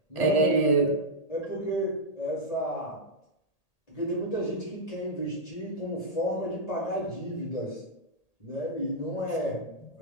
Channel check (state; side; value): late; right; 1.8 ms